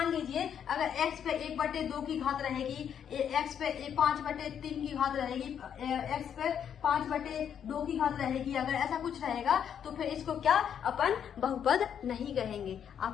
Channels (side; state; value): right; quieter; 8.5 dB